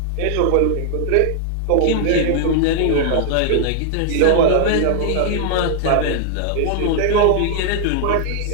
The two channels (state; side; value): different; both; correlation -0.01